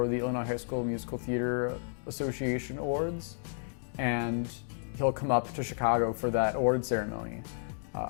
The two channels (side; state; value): right; silent; digital silence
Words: the Illinois High School Musical Theater Association Awards, and he'll come up to Chicago for that award ceremony,